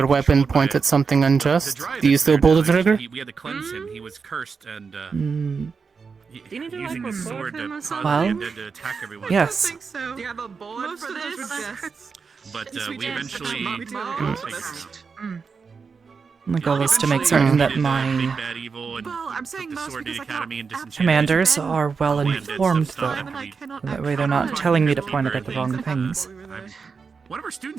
weapon point at something unjust, do you still pull the trigger? We had to cleanse him. He was cursed and using the sword to attack everyone. Yes. Do you have a board for this? But we eventually... The goal is to make certain that my commanders are well informed, though. That way they're not telling me to point it at the wrong things. One of our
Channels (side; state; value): left; quieter; 5.3 dB